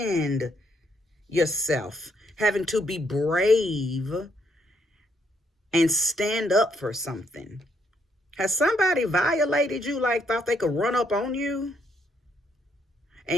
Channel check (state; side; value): normal; both; correlation 0.73